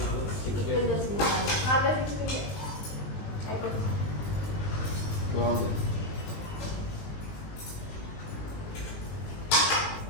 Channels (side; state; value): right; late; 20 ms